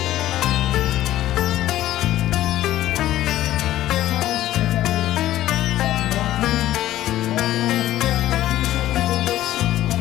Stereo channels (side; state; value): right; quieter; 14.0 dB